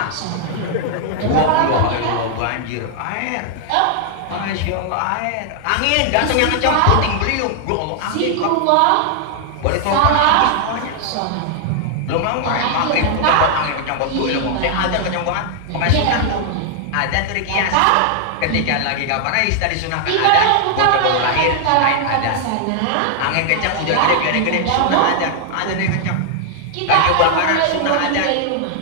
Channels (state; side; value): different; both; correlation 0.00